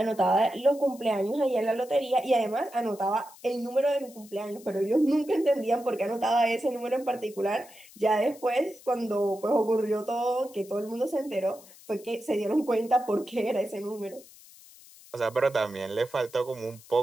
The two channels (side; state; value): left; noise; hiss, 22 dB below the sound